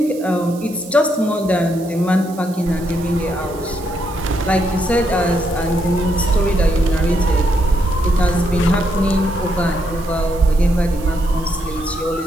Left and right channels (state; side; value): noise; right; hiss, 20 dB below the sound